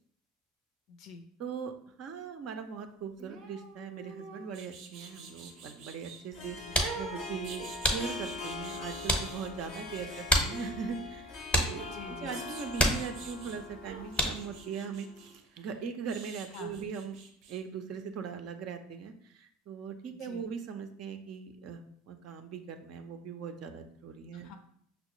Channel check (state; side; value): normal; both; correlation 0.37